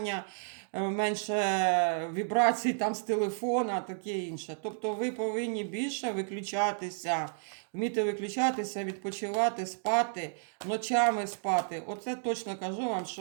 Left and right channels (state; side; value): silent; left; digital silence